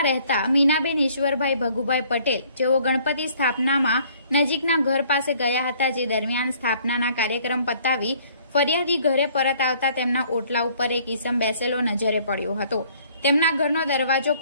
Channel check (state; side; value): inverted; both; correlation -0.59